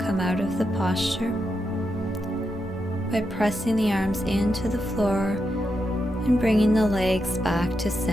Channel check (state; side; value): normal; both; correlation 0.85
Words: out of the posture by pressing the arms into the floor and bringing the legs back to